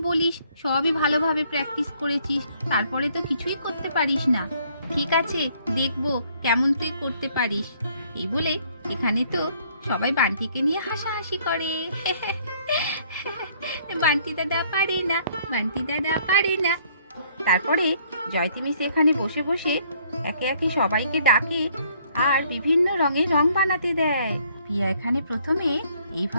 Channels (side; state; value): both; inverted; correlation -0.63